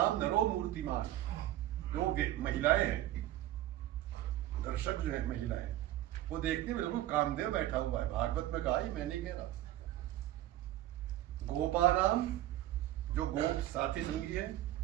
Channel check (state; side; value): quieter; left; 14.2 dB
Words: नरो मूर्तिमान, जो महिलाएं हैं, दर्शक जो है महिलाएं, वो देखते बिल्कुल कामदेव बैठा हुआ है। भागवत में कहा ही, मैं नहीं कह रहा। गोपानाम, जो गोप साथी संगी है,